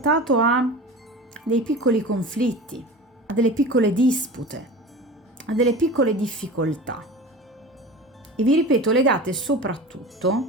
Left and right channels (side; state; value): both; normal; correlation 0.34